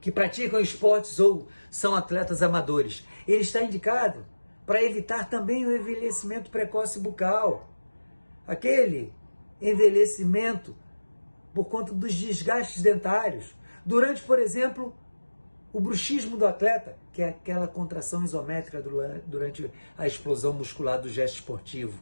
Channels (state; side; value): inverted; both; correlation -1.00